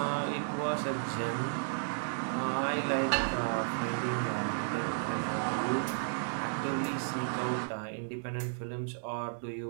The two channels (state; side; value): silent; left; 55 dB below the other